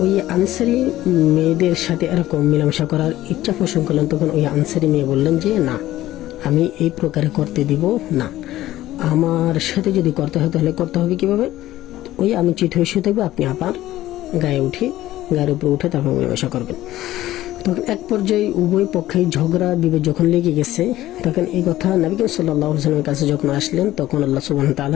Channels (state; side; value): quieter; right; 14.9 dB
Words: ওই আনসারী মেয়েদের সাথে এরকম মেলামেশা করার ইচ্ছা পোষণ করলেন, তখন ওই আনসারী মেয়ে বললেন যে না, আমি এই প্রকারে করতে দিব না, আমার সাথে যদি করতে হয় তাহলে করতে হবে কিভাবে, ওই আমি চিৎ হয়ে শুয়ে থাকবো, আপনি আবার গায়ের উপরে উঠে তারপর মেলামেশা করবেন। তখন এক পর্যায়ে উভয় পক্ষে ঝগড়া বিভেদ যখন লেগে গেছে, তখন এই কথা নবী করিম সাল্লাল্লাহু আলাইহি ওয়াসাল্লামের কাছে যখন আসলেন, তখন আল্লাহ সুবহানাহু ওয়া